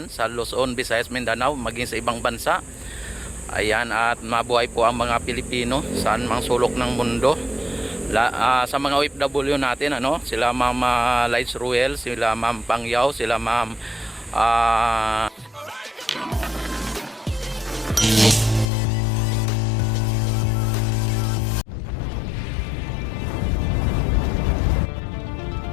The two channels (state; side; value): drops out; right; at 18.7 s